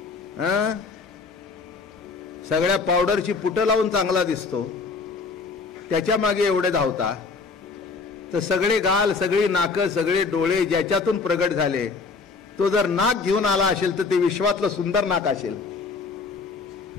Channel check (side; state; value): right; quieter; 4.5 dB